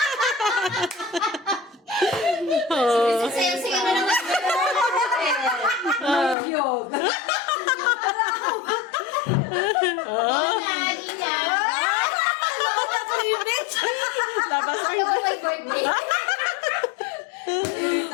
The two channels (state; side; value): drops out; right; at 6.4 s